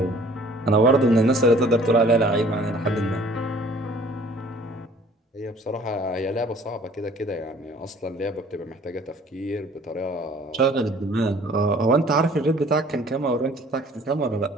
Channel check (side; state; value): both; normal; correlation 0.53